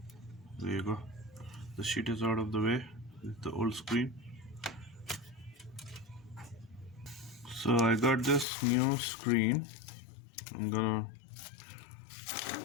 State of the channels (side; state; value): right; drops out; at 8.5 s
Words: There you go. The sheet is out of the way with the old screen. So I got this new screen I'm gonna